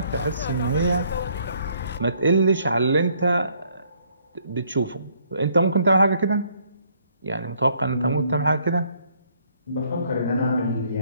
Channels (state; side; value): inverted; both; correlation -0.66